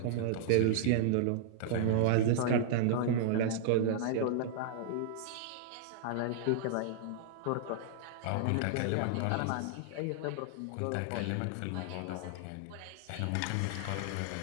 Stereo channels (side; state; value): both; different; correlation -0.01